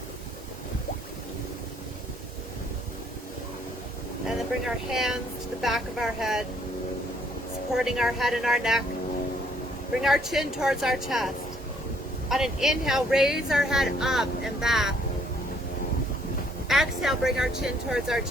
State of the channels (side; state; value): both; normal; correlation 0.65